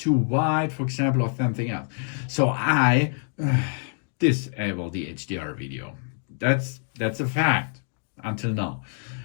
wide, for example, or something else. So I disable the HDR video. That's a fact until now.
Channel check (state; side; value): silent; right; 61 dB below the other